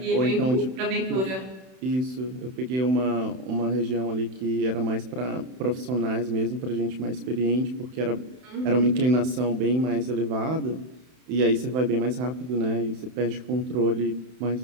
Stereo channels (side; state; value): left; late; 31 ms